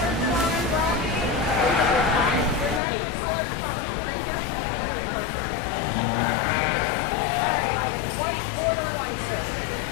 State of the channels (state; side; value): drops out; right; at 2.8 s